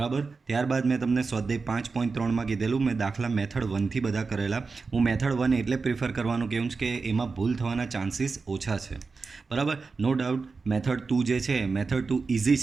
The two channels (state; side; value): quieter; left; 4.4 dB